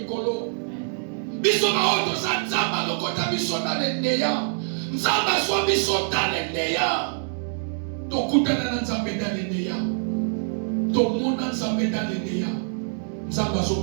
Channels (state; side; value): silent; left; digital silence